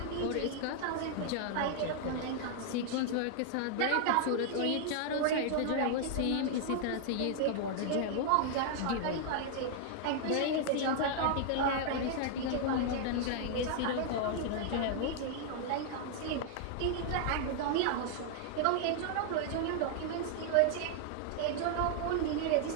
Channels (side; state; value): both; different; correlation 0.00